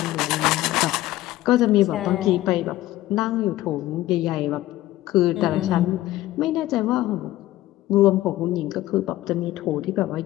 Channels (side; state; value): right; quieter; 15.8 dB